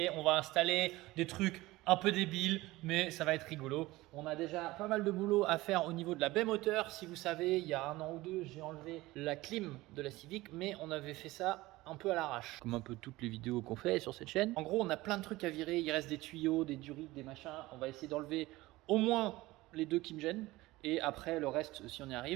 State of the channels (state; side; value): quieter; left; 19.1 dB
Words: on va installer des trucs un peu débiles, mais ça va être rigolo. On a déjà pas mal de boulot à faire au niveau de la baie moteur. Si vous savez, il y a 1 an ou 2, j'ai enlevé la clim de la Civic, mais on avait fait ça un peu à l'arrache, comme un peu toutes les vidéos qu'on fait sur cette chaîne. En gros, on a plein de trucs à virer, il reste des tuyaux, des durites, des machins. On va essayer d'enlever au moins les 2 qui me gênent. Et après le reste si on y